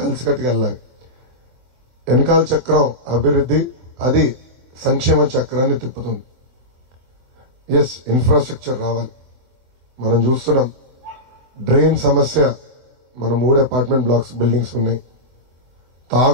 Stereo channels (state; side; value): late; left; 23 ms